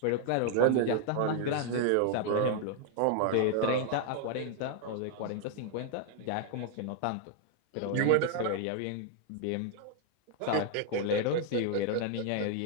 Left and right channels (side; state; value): both; different; correlation 0.00